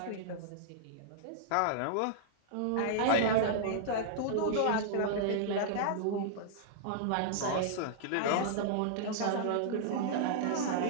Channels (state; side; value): different; both; correlation -0.01